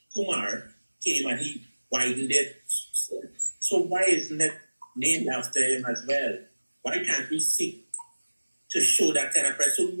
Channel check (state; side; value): inverted; both; correlation -1.00